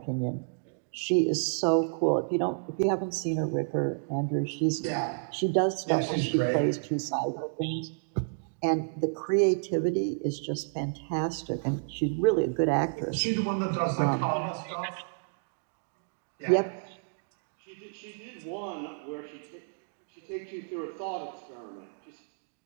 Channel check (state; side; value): silent; left; digital silence